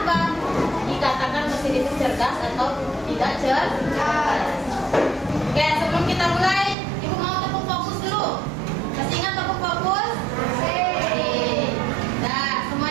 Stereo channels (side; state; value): left; drops out; at 6.8 s